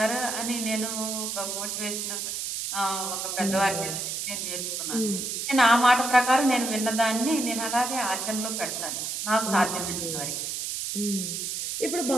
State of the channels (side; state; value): right; noise; hiss, 3 dB below the sound